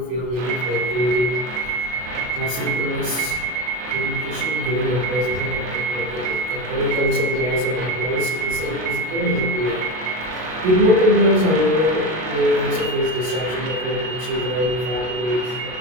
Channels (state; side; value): late; left; 32 ms